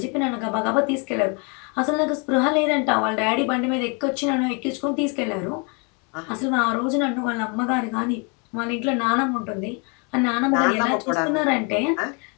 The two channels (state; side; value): quieter; right; 34.3 dB